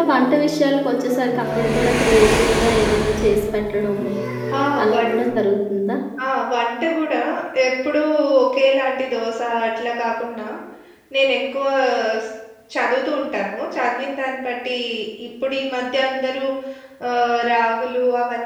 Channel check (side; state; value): both; identical; correlation 1.00